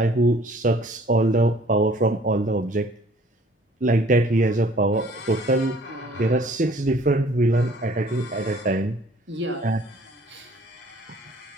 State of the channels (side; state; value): both; normal; correlation 0.55